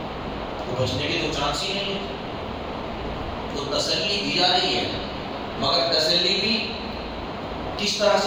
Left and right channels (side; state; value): both; identical; correlation 1.00